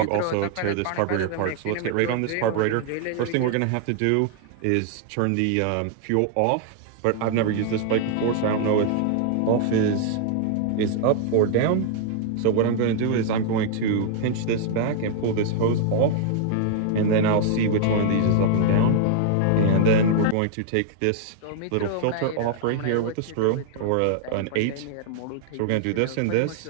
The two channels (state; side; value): different; both; correlation 0.00